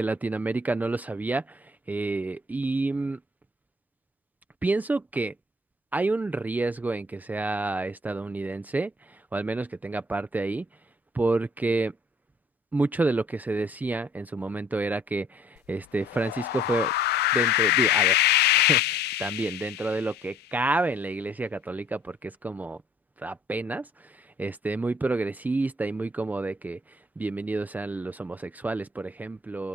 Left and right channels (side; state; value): both; normal; correlation 0.59